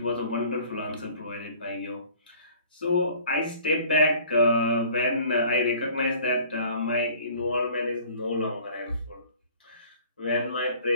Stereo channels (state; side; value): inverted; both; correlation -0.51